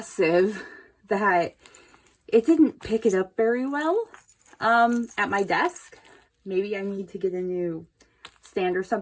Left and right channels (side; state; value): both; identical; correlation 1.00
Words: that it didn't pick it up very well at my desk. Maybe I need to get a new stand or